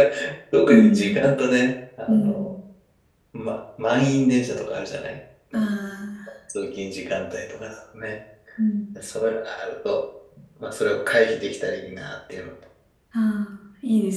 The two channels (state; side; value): identical; both; correlation 1.00